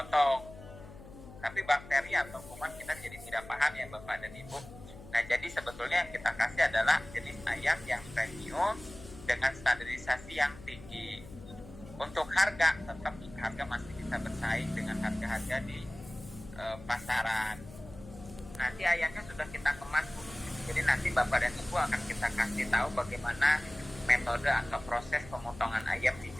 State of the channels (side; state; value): left; noise; hum, 16 dB below the sound